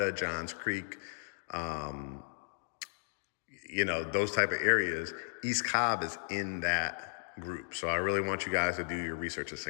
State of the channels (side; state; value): right; silent; digital silence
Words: Johns Creek, those type of areas. East Cobb is in that group. So I really want you guys to do your research. It's